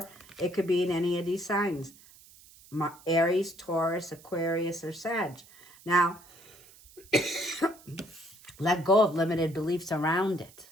it could be in any of these signs. Aries, Taurus, Aquarius, or Sag. Now, let go of limited beliefs around it.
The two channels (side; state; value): right; noise; hiss, 23 dB below the sound